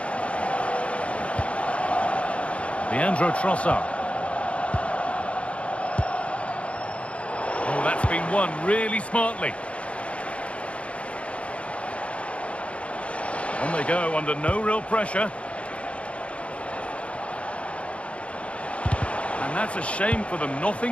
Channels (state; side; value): late; right; 0.062 ms